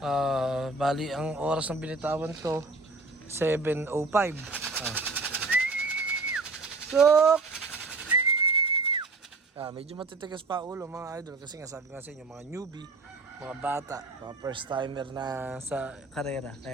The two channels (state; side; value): quieter; left; 3.5 dB